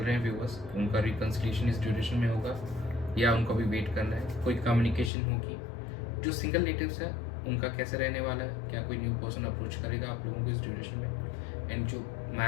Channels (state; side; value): drops out; right; at 5.1 s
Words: हैं व्यूअर्स, उनका रिकन्सिलिएशन इस ड्यूरेशन में होगा या उनको भी वेट करना है? कोई कम्युनिकेशन होगी? जो सिंगल नेटिव्स है उनका कैसे रहने वाला है? क्या कोई न्यू पर्सन अप्रोच करेगा आप लोगों को इस ड्यूरेशन में? एंड जो